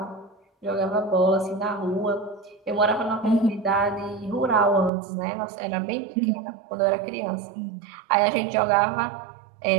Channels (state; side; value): drops out; left; at 4.9 s